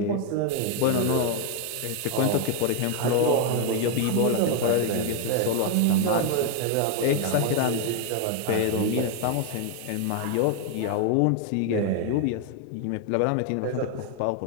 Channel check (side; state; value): both; different; correlation 0.01